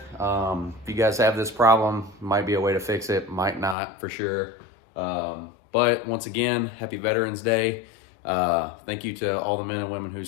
If you guys have this problem, might be a way to fix it, might not, for sure. But once again, happy Veterans Day. Thank you to all the men and women who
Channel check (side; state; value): right; drops out; at 3.8 s